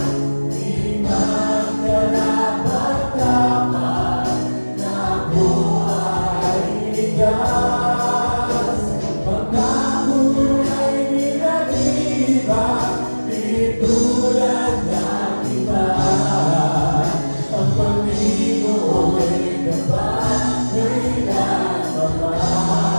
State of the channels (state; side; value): inverted; both; correlation -1.00